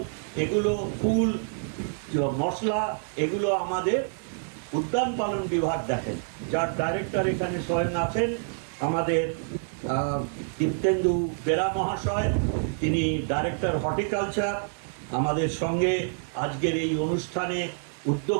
এগুলো ফুল, মশলা, এগুলো আমাদের উদ্যান পালন বিভাগ দেখেন, যার ডাইরেক্টর এখানে স্বয়ং আছেন আমাদের দীপ্তেন্দু বেরা মহাশয়, তিনি ডাইরেক্টর হর্টিকালচার। আমাদের সঙ্গে আজকের এই অনুষ্ঠানে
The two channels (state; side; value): silent; left; digital silence